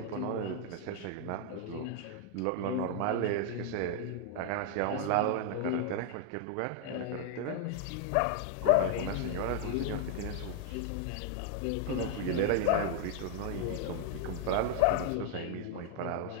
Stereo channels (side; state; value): both; different; correlation 0.00